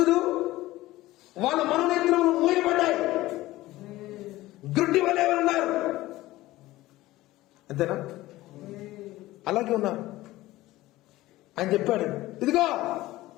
వాళ్ళ మనోనేత్రములు మూయబడ్డాయి. గుడ్డి వలె ఉన్నారు. అంతేనా? అలాగే ఉన్నారు. ఆయన చెప్పాడు, ఇదిగో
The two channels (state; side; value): quieter; right; 17.3 dB